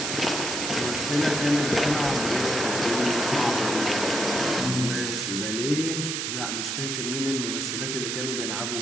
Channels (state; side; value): noise; right; hiss, 2 dB below the sound